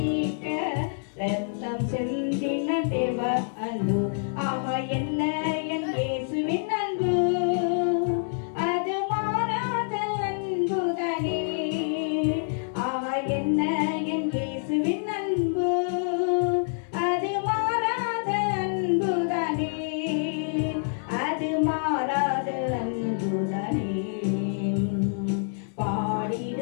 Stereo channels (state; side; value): silent; right; 60 dB below the other